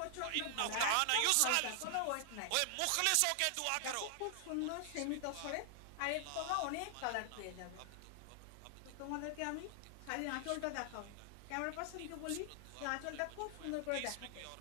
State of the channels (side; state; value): both; different; correlation 0.00